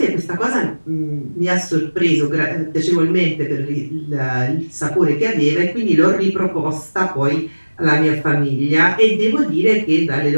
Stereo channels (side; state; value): both; inverted; correlation -1.00